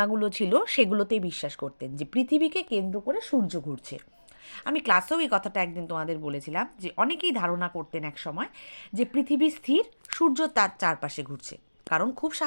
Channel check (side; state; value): both; inverted; correlation -1.00